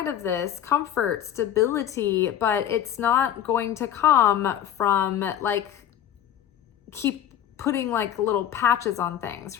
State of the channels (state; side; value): quieter; right; 10.4 dB